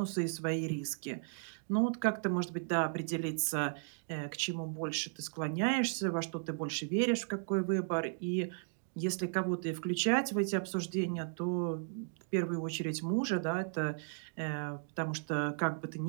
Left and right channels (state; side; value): silent; left; digital silence